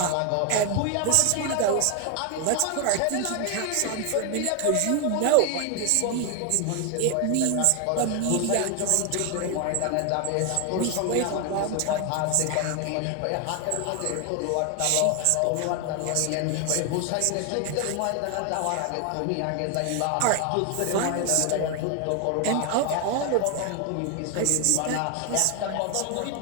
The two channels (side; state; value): both; different; correlation 0.01